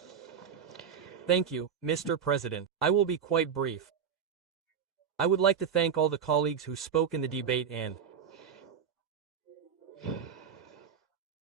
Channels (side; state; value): left; quieter; 7.5 dB